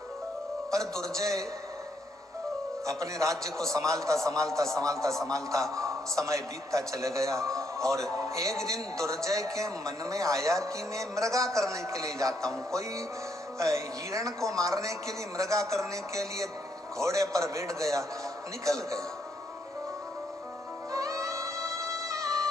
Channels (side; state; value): both; normal; correlation 0.74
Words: पर दुर्जय अपने राज्य को संभालता संभालता संभालता संभालता समय बीतता चले गया और एक दिन दुर्जय के मन में आया कि मैं मृगा करने के लिए जाता हूँ। कोई हिरण को मारने के लिए, मृगा करने के लिए घोड़े पर बैठ गया, निकल गया।